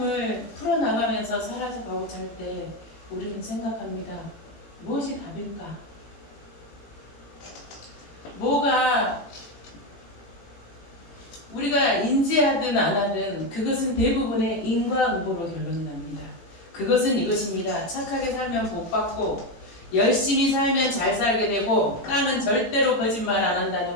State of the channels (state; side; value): late; right; 18 ms